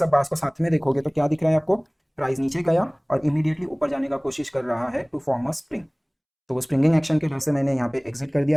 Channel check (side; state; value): both; identical; correlation 1.00